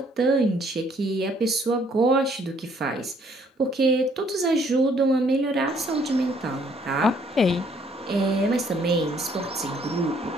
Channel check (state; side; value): normal; both; correlation 0.64